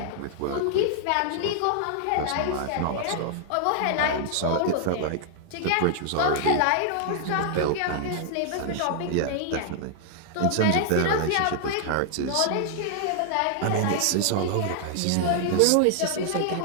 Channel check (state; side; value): different; both; correlation -0.01